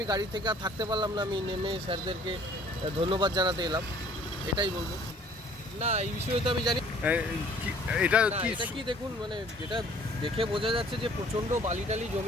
গাড়ি থেকে আর থাকতে পারলাম না, আমি নেমে স্যারদেরকে ধন্যবাদ জানাতে এলাম, এটাই বলবো। না, এই বিষয়ে তো আমি জানি এটা কি দেখুন, মানে যেটা দেখে বোঝা যাচ্ছে যে প্রচণ্ড বালিটালি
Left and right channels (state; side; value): normal; both; correlation 0.55